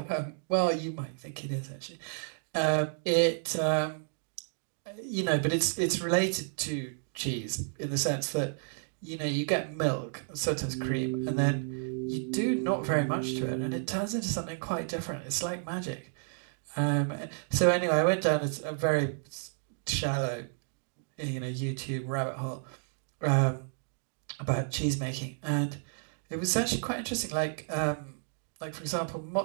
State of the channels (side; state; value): left; silent; digital silence